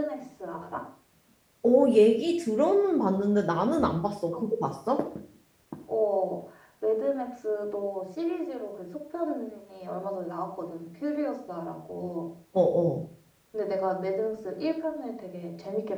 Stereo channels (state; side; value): identical; both; correlation 1.00